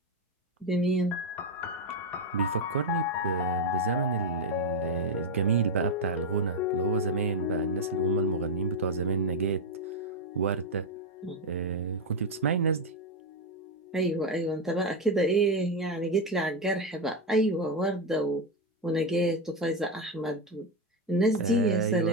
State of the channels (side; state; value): both; normal; correlation 0.07